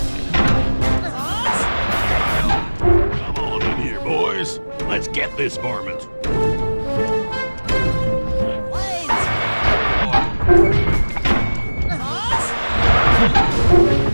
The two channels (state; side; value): inverted; both; correlation -1.00